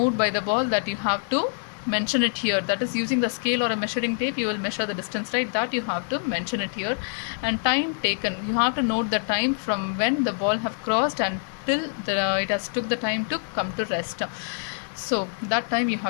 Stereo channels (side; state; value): right; silent; 61 dB below the other